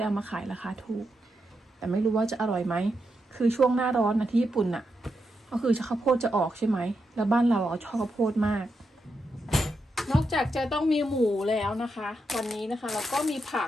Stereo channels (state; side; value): normal; both; correlation 0.85